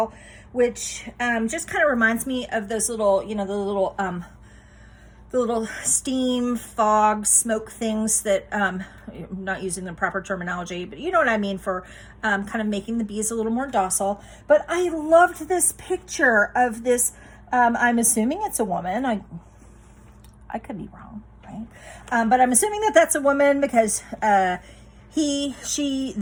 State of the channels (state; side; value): identical; both; correlation 1.00